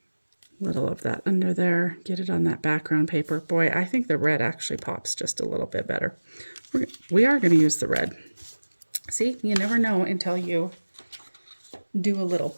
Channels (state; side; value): inverted; both; correlation -1.00